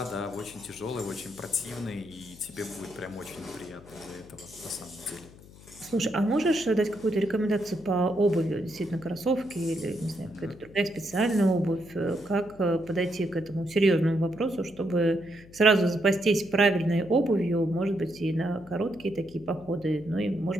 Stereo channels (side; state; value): left; noise; hum, 21 dB below the sound